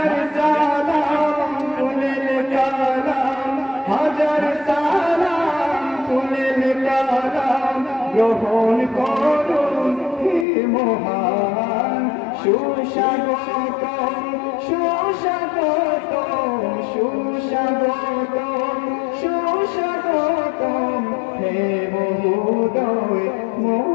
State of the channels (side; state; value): right; drops out; at 10.5 s